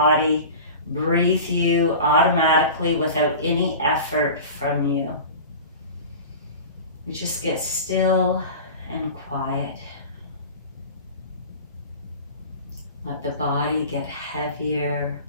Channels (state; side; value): inverted; both; correlation -0.35